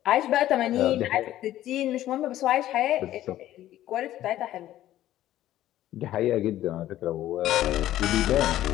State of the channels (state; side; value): quieter; right; 13.6 dB